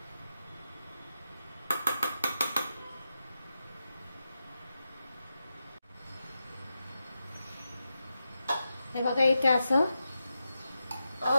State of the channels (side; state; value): both; inverted; correlation -0.89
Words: हे बघा, इथे असं